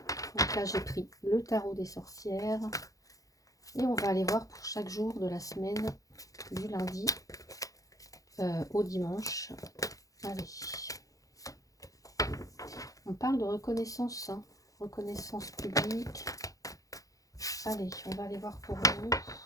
Donc là, j'ai pris le tarot des sorcières. Et on va aller voir pour chaque jour de la semaine, du lundi au dimanche. Allez. On parle de reconnaissance, hein, reconnaissance publique. Allez, on va aller voir pour vous.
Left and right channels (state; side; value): late; right; 0.17 ms